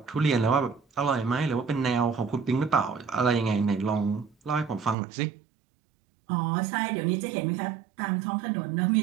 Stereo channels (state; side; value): drops out; left; at 5.0 s